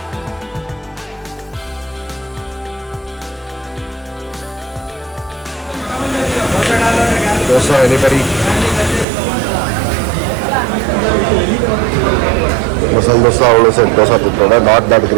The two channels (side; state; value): left; drops out; at 9.1 s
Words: Dosa, anybody? Masala dosa, also said dosa to not that